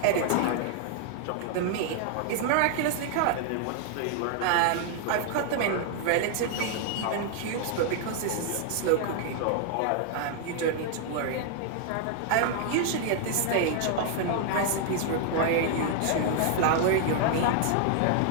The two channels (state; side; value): different; both; correlation 0.00